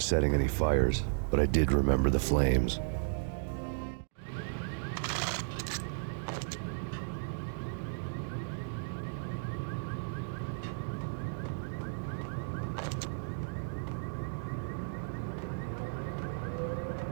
setting any fires, but I did remember the flames.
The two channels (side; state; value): left; silent; digital silence